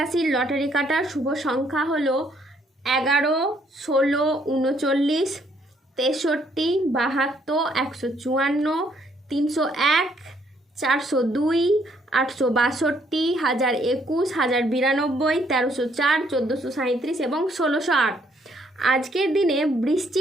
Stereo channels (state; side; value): normal; both; correlation 0.68